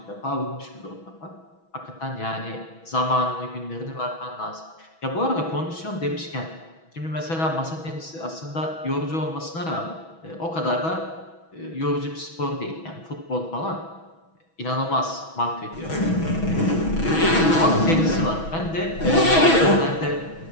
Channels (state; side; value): late; right; 6.1 ms